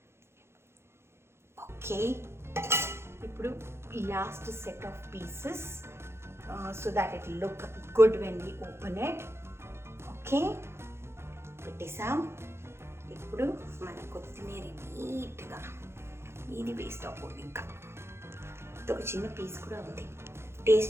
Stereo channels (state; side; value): late; left; 0.12 ms